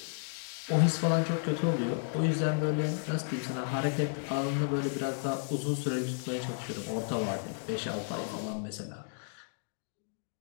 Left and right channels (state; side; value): silent; right; digital silence